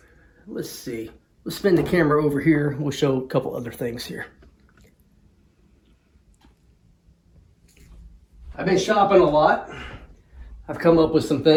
Let's see. Let's spin the camera over here. We'll show a couple other things here. I've been shopping a lot. I've come up with some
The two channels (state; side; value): identical; both; correlation 1.00